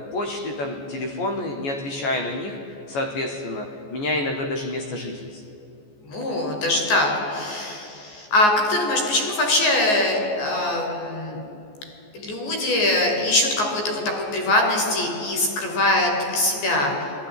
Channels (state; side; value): late; right; 14 ms